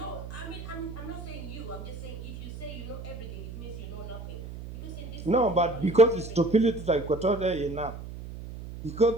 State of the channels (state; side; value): noise; right; hum, 10 dB below the sound